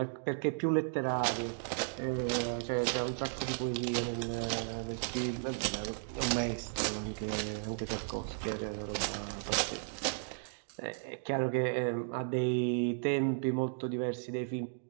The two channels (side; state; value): left; silent; digital silence